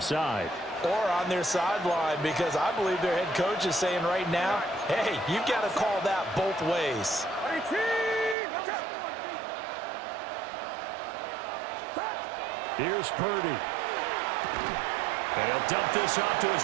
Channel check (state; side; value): drops out; left; at 8.3 s